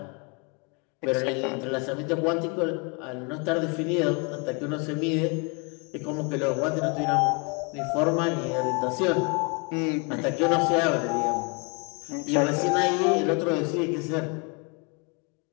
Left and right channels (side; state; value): right; quieter; 32.6 dB